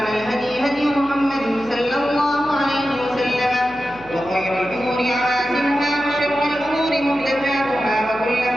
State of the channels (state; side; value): noise; right; hum, 21 dB below the sound